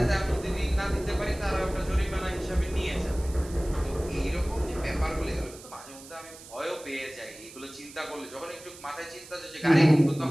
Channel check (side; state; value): right; noise; hiss, 18 dB below the sound